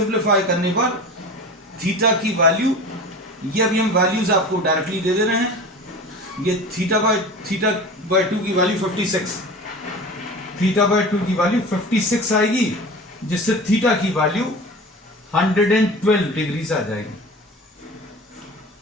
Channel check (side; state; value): both; normal; correlation 0.35